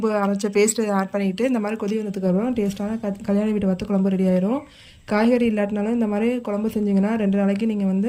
அரைச்ச பேஸ்ட்டு ஆட் பண்ணிக்கிட்டு இந்த மாதிரி கொதி வந்ததுக்கப்புறம் டேஸ்ட்டான கல்யாண வீட்டு வத்த குழம்பு ரெடி ஆயிரும். காய்கறி இல்லாட்டினாலும் இந்த மாதிரி குழம்பு செஞ்சிங்கன்னா 2 நாளைக்கு நீங்கள் வந்து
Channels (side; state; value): both; identical; correlation 1.00